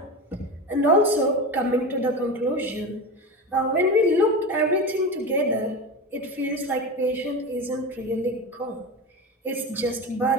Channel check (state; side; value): normal; both; correlation 0.25